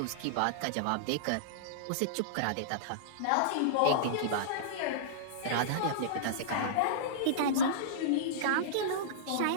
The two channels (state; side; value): different; both; correlation -0.03